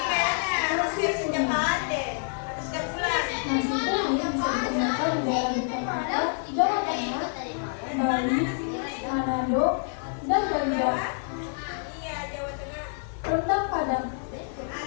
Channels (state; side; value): silent; right; 60 dB below the other